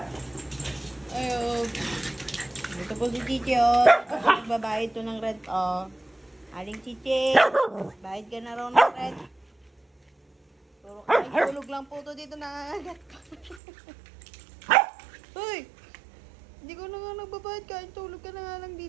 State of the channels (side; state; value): left; drops out; at 13.6 s